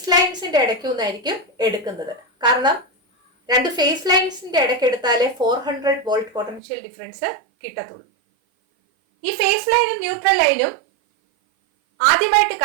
ലൈൻസിന്റെ ഇടയ്ക്ക് നിന്നായിരിക്കും എടുക്കുന്നത്. കാരണം 2 ഫേസ് ലൈൻസിന്റെ ഇടയ്ക്ക് എടുത്താലേ 400 വോൾട്ട് പൊട്ടൻഷ്യൽ ഡിഫറൻസ് കിട്ടത്തുള്ളൂ. ഈ ഫേസ് ലൈനും ന്യൂട്രൽ ലൈനും ആദ്യമായിട്ട്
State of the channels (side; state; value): left; drops out; at 6.6 s